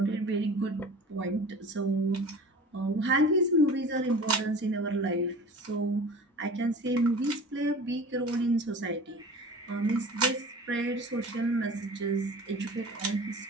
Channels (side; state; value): both; normal; correlation 0.39